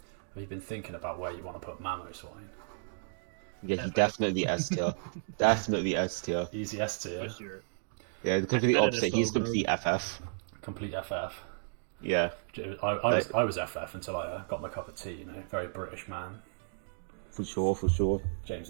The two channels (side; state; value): left; silent; digital silence